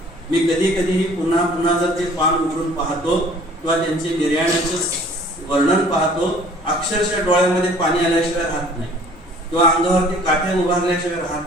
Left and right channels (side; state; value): both; normal; correlation 0.52